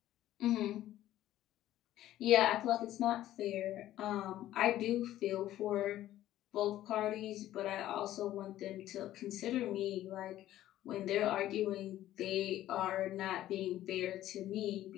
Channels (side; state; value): right; quieter; 13.6 dB